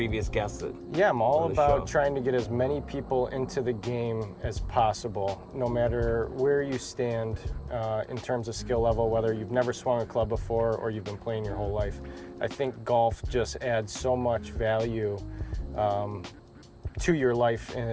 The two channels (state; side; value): identical; both; correlation 1.00